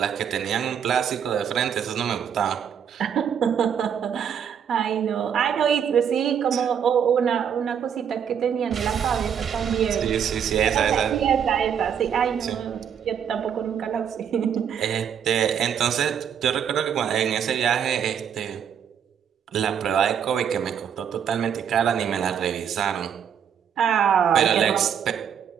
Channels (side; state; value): left; quieter; 8.2 dB